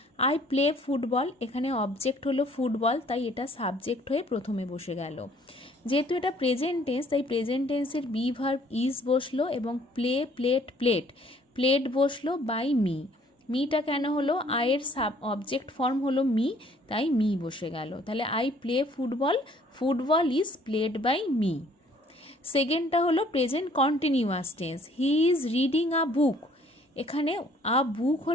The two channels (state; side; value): normal; both; correlation 0.59